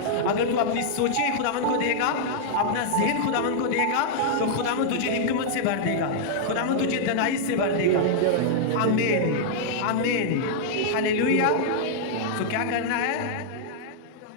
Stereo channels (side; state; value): both; different; correlation -0.01